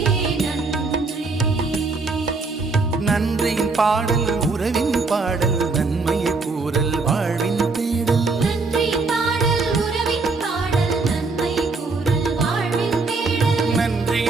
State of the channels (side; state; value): left; quieter; 3.9 dB